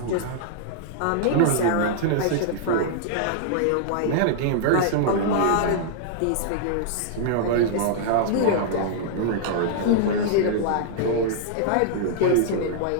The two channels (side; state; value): both; different; correlation -0.01